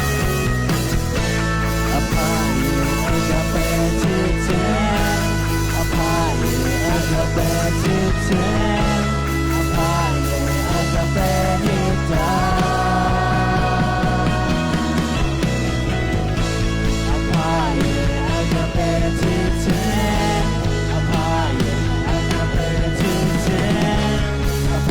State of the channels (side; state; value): both; identical; correlation 1.00